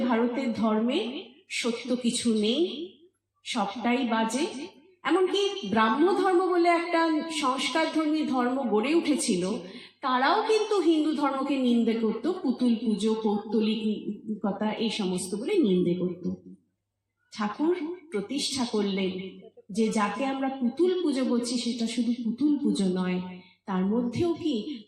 ভারতের ধর্মে সত্য কিছু নেই, সবটাই বাজে। এমনকি ব্রাহ্ম ধর্ম বলে একটা সংস্কারধর্মী ধর্ম গড়ে উঠেছিল, তারাও কিন্তু হিন্দু ধর্মকে নিন্দে করত, পুতুল পুজো, পৌত্তলিকতা এই সমস্ত বলে নিন্দে করত। ঠাকুর প্রতিষ্ঠা করলেন যে যাকে আমরা পুতুল পুজো করছি সেটা শুধু পুতুল পুজো নয়, তার মধ্যেও কি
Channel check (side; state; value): both; identical; correlation 1.00